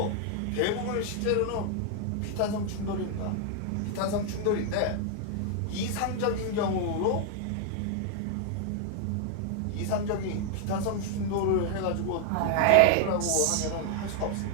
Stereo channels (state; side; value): different; both; correlation 0.00